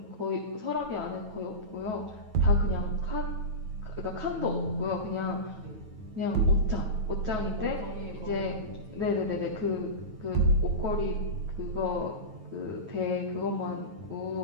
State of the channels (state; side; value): late; left; 9.2 ms